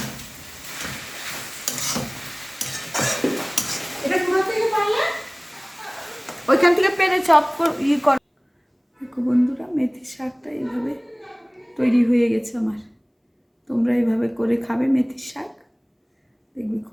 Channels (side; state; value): both; identical; correlation 1.00